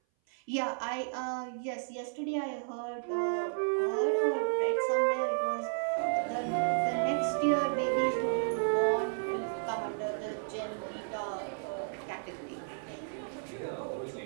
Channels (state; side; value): silent; left; 56 dB below the other